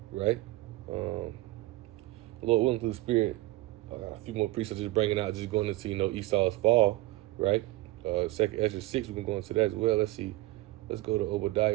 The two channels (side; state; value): left; quieter; 18.8 dB